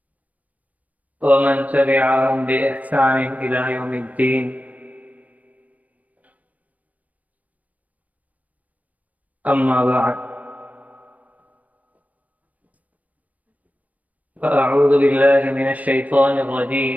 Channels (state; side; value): late; left; 0.071 ms